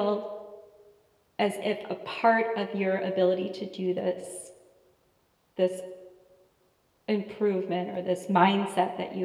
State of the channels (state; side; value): identical; both; correlation 1.00